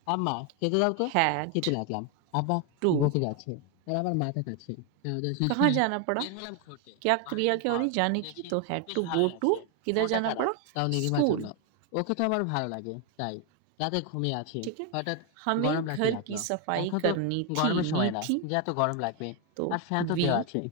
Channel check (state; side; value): different; both; correlation 0.01